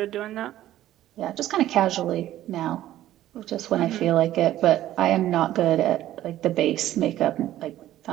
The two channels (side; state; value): left; quieter; 13.5 dB